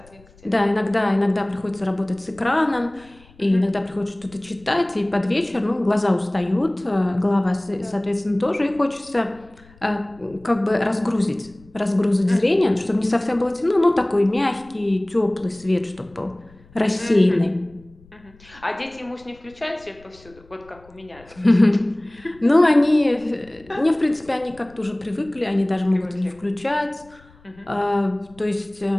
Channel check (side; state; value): left; noise; rumble, 27 dB below the sound